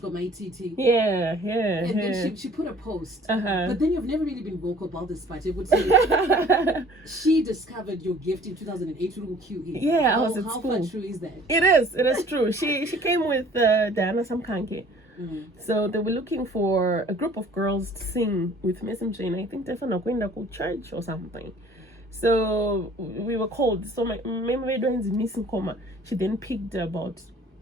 Gomaititi. Yeah. And then she put a post. But then you've never really been vocal about this part. It would say she discovered your gift in 2008 through QE. Yeah, I was at school. How far true is that? It is true. She came with Diana Samkanke. So they were looking for a group of girls to sing with Miss MJ, and I think they're going to church or something. So we were called. So my memory is missing coma. She then picked about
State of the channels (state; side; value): normal; both; correlation 0.52